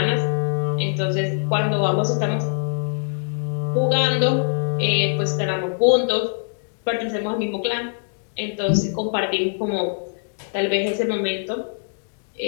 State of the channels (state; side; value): silent; right; digital silence